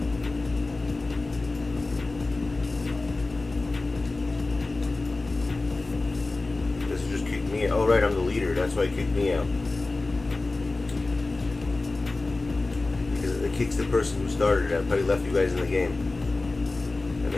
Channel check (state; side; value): quieter; right; 3.3 dB